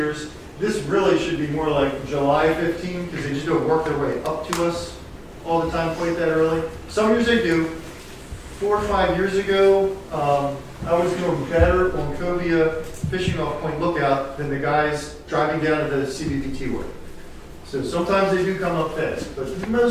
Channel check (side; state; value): both; identical; correlation 1.00